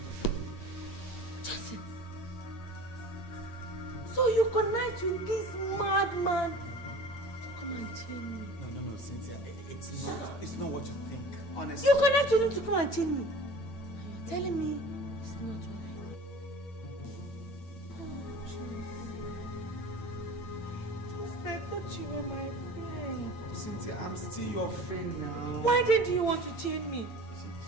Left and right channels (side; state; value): right; late; 8.9 ms